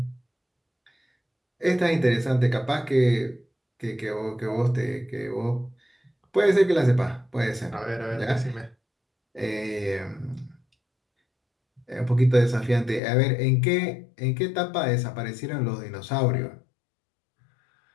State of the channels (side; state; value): right; drops out; at 13.0 s